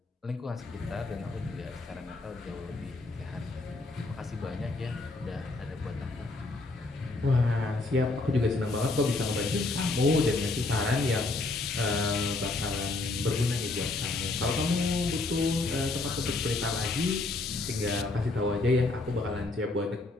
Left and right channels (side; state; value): right; quieter; 3.3 dB